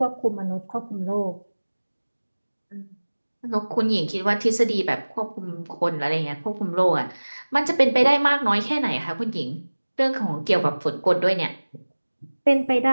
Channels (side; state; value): both; inverted; correlation -1.00